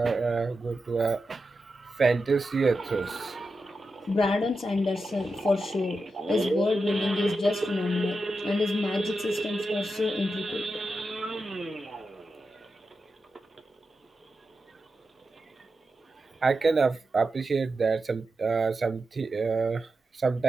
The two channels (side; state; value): both; normal; correlation 0.89